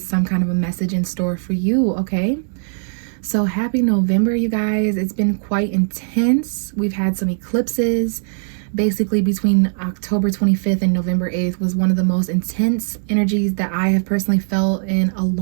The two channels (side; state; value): left; silent; 64 dB below the other